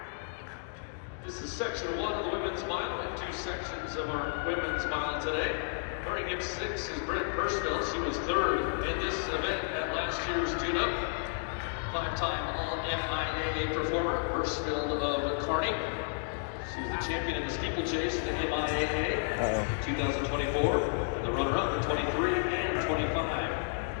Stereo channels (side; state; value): right; silent; digital silence